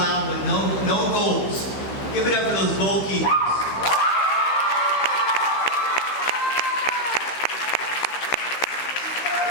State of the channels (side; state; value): right; late; 15 ms